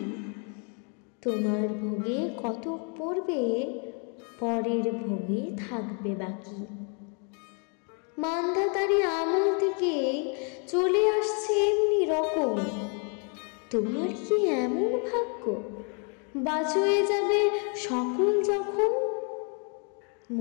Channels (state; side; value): quieter; right; 38.7 dB